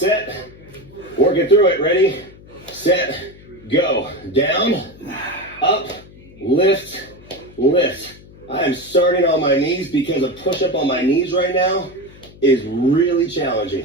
Working through it. Ready, set, go. Down, up, lift, lift. I am starting on my knees because a push-up on my knees right now is really challenging.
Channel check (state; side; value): noise; left; hum, 22 dB below the sound